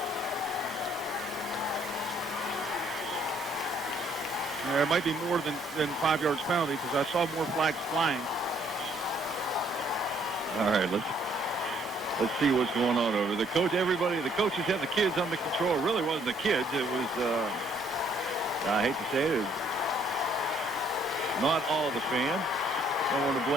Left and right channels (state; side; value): normal; both; correlation 0.65